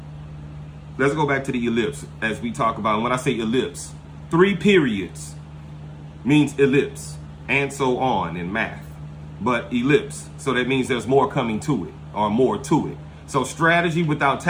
go back to the ellipse as we talk about. And when I say ellipse, 3 periods means ellipse, and so on in math. But ellipse, so that means there's more coming to it, or more to it. So strategy without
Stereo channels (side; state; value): both; identical; correlation 1.00